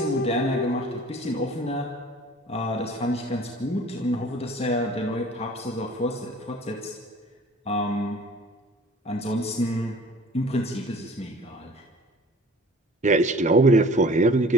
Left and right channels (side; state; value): both; normal; correlation 0.47